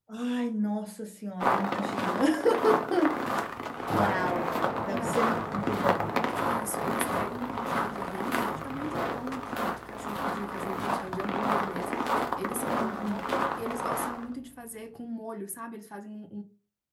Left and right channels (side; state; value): both; identical; correlation 1.00